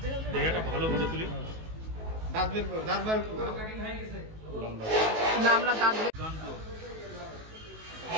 বের হবে দেখাটা ভালো করে তুলি দাঁত বার করো না আমরা দাঁত বের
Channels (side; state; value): left; late; 19 ms